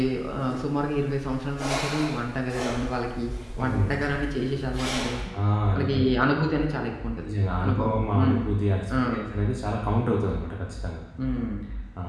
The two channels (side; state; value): both; identical; correlation 1.00